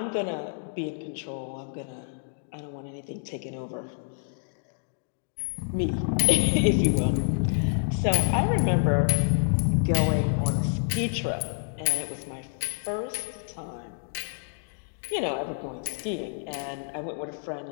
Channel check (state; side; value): silent; right; digital silence